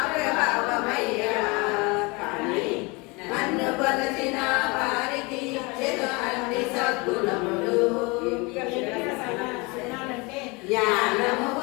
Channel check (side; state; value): right; quieter; 27.0 dB